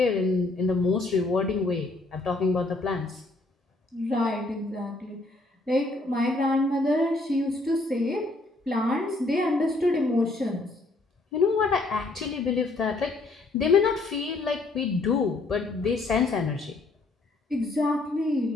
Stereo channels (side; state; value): right; quieter; 3.1 dB